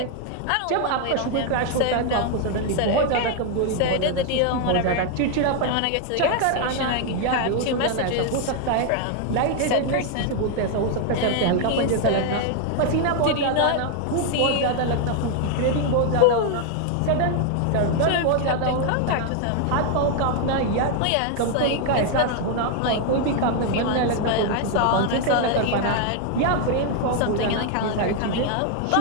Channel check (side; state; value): both; different; correlation 0.00